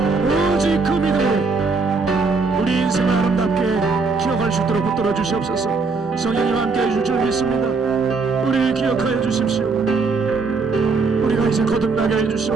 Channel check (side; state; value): left; quieter; 4.3 dB